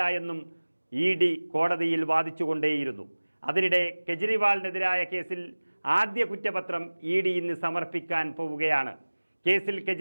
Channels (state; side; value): inverted; both; correlation -1.00